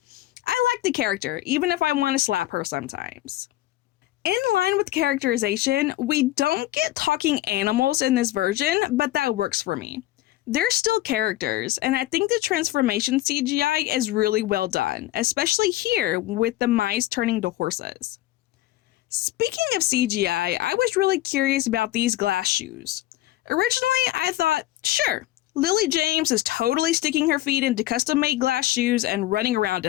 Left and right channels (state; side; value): quieter; right; 15.6 dB